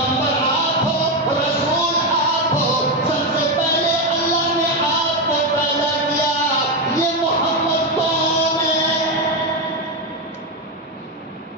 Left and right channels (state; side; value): normal; both; correlation 0.09